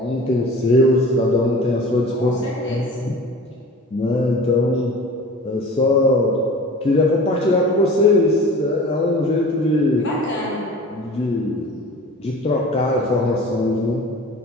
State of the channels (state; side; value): normal; both; correlation 0.40